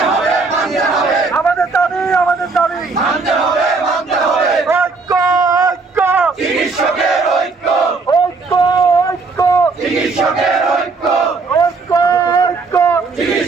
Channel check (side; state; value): left; quieter; 4.2 dB